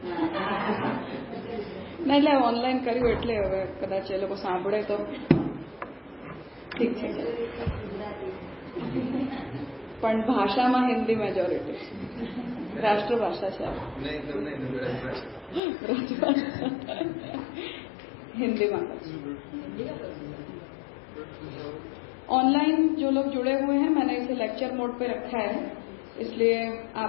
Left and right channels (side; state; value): right; drops out; at 15.6 s